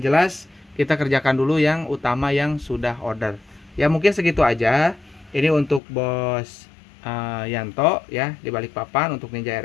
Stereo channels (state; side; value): drops out; right; at 5.8 s